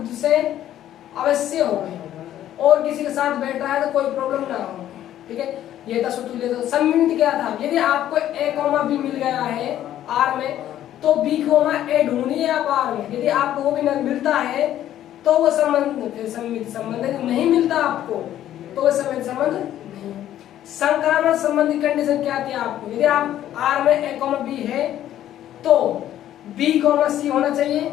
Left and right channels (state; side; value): quieter; right; 12.0 dB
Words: से अवश्य हो और किसी के साथ बैठ रहा है तो कोई प्रॉब्लम ना हो, ठीक है, ये था स्वतुल्य। तो सम्मिलित क्या था? यदि आपको a, b मिल गया है r में, तो b, a ढूंढनी है आप r में। यदि आपको वो भी न मिलता है तो वो संबंध फिर सम्मिलित संबंध है। नहीं मिलता आपको तो वो सम्मिलित संबंध नहीं। संक्रामक संबंध की कंडीशन क्या थी आपको? यदि आप r में a, b है तो b, c होना चाहिए।